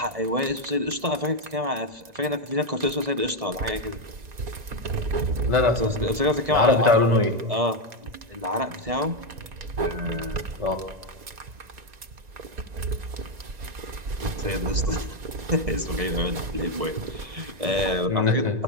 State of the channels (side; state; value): left; late; 1.9 ms